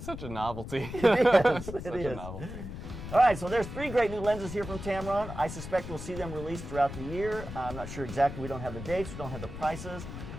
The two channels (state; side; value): noise; left; rumble, 9 dB below the sound